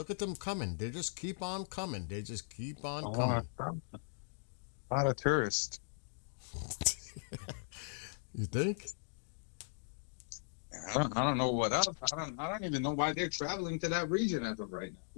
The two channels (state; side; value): silent; right; digital silence